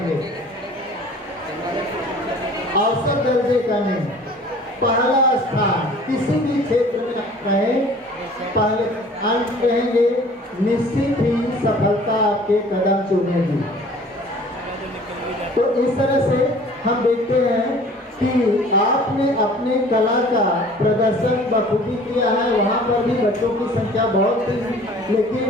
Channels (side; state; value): both; normal; correlation 0.49